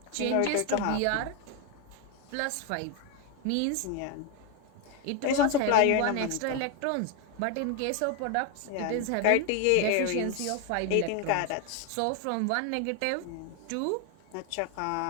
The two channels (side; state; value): both; different; correlation 0.01